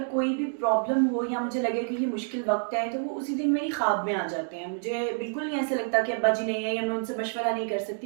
कोई भी प्रॉब्लम हो या मुझे लगे कि ये मुश्किल वक्त है, तो वो उसी दिन मेरी ख्वाब में आ जाते हैं। मुझे बिल्कुल नहीं ऐसा लगता कि अब्बा जी नहीं है या मैं उनसे मशवरा नहीं कर सकती।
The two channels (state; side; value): silent; left; digital silence